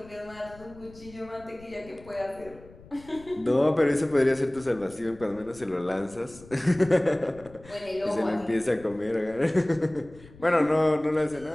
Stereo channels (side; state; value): left; noise; rumble, 21 dB below the sound